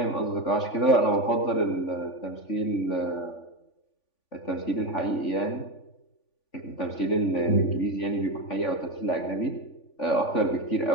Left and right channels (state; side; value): late; right; 3.5 ms